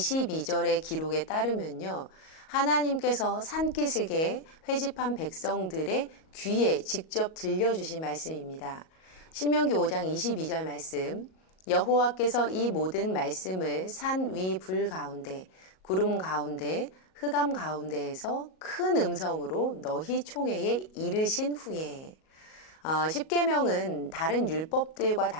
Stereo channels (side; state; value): right; late; 38 ms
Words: 기록에 따르면요, 하나님께서 산기슭에 회집한 백성들의 귀에 직접 들려주신 말씀입니다. 신명기 5장 22절 말씀, 여호와께서 이 모든 말씀을 산 위 불 가운데, 구름 가운데, 흑암 가운데에서 큰 음성으로 너희 총회에 이르신 후에, 십계명은 다른 율법들과